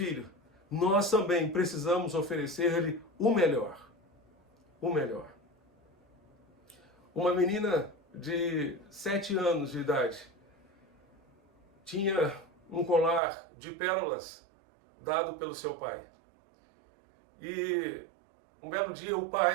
Nós também precisamos oferecer-lhe o melhor. O melhor. Uma menina de 7 anos de idade tinha um colar de pérolas dado pelo seu pai. E um belo dia o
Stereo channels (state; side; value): drops out; left; at 13.2 s